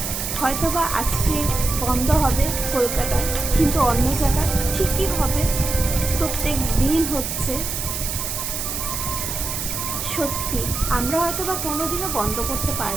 হয়তোবা আজকে বন্ধ হবে কলকাতায়, কিন্তু অন্য জায়গায় ঠিকই হবে, প্রত্যেক দিন হচ্ছে। সত্যি আমরা হয়তোবা কোনোদিনও বন্ধ করতে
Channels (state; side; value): noise; right; hiss, 4 dB below the sound